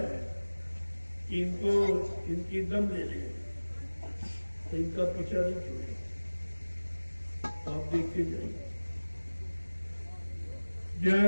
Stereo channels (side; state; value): both; inverted; correlation -1.00